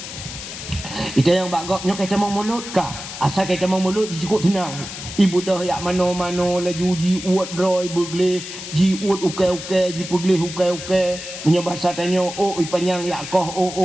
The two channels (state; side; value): noise; left; hiss, 10 dB below the sound